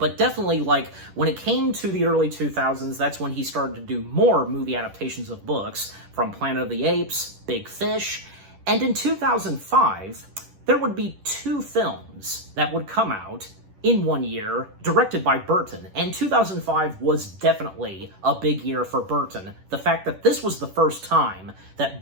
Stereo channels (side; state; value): left; late; 10 ms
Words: definitely when it came to the early 2000s, that's when he started to do more movie adaptations of books, from Planet of the Apes, Big Fish, and in 2005, there would be two films that would come out in 1 year, directed by Burton, and 2005 was definitely a big year for Burton. The fact that this was the first time that